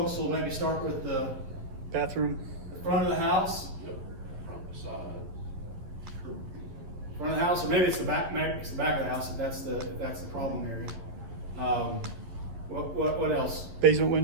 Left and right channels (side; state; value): left; late; 11 ms